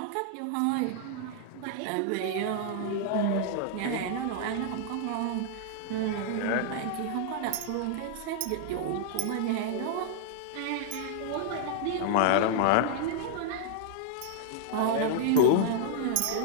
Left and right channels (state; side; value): different; both; correlation 0.00